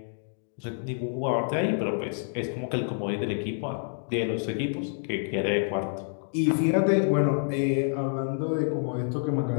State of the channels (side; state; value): right; silent; digital silence